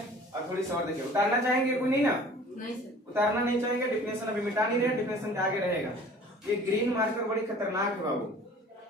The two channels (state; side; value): normal; both; correlation 0.47